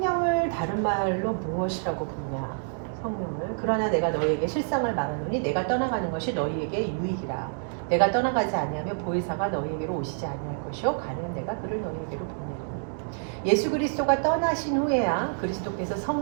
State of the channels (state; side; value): silent; left; digital silence